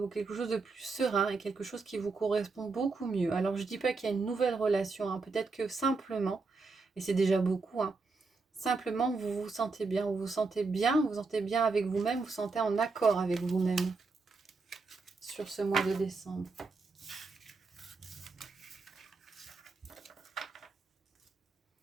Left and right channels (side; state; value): left; quieter; 4.1 dB